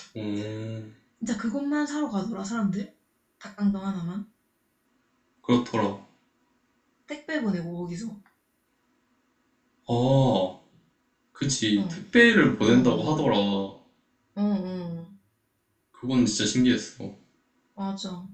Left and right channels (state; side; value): identical; both; correlation 1.00